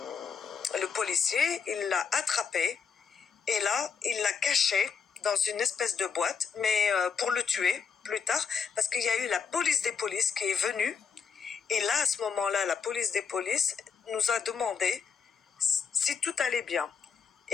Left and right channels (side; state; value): right; quieter; 6.2 dB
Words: le policier, il l'a attrapé, et là, il l'a caché dans une espèce de boîte, mais pour le tuer plus tard, parce qu'il y a eu la police des polices qui est venue, et là, à ce moment-là, la police des polices nous a demandé si tout allait bien.